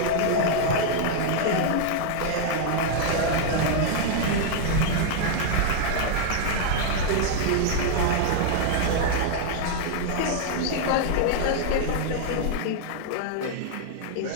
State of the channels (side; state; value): both; different; correlation 0.00